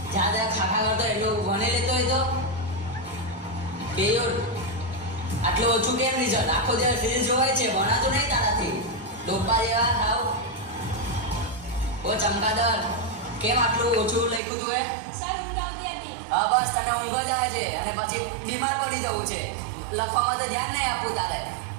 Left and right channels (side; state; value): left; drops out; at 14.4 s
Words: જ્યાં ખાખા કરતો એટલું ભણી લેતો હોય તો બેયોર આટલું ઓછું કેમ રિઝલ્ટ? આખો દિવસ રીલ્સ જોવાય છે, ભણાતું નહીં તારાથી. લોપા જેવા થાવ. ઓ ચમકાદર, કેમ આટલું ઓછું લખ્યું તું? સર, ઊંઘ આવતી હતી. હા બસ, તને ઊંઘ જ આવે છે અને પછી બીમાર પડી જવું છે. લખવામાં તો ધ્યાન નહીં આપવું તારે.